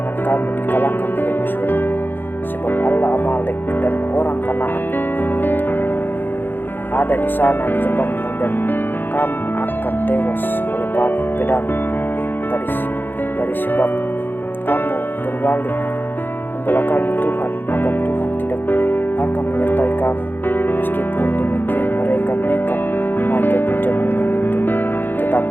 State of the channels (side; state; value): right; late; 0.095 ms